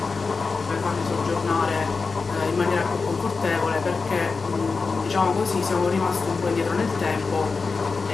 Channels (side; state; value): right; quieter; 4.5 dB